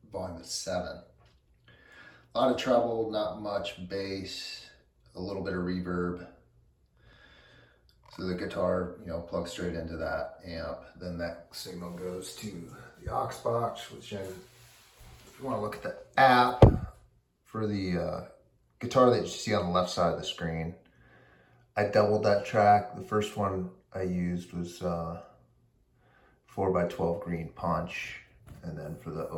volume at 7. A lot of treble, not much bass, a little bit of reverb. So the guitar, plugs straight into that amp. Then that signal goes to the aux box, which if you want to look at the app for the guitar that you see on the left side of the screen, I doubled that track. The first one I used was 4x12 green punch. And then for the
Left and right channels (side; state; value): both; identical; correlation 1.00